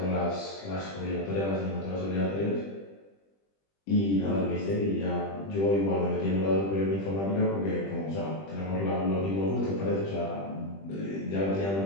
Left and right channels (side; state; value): right; late; 20 ms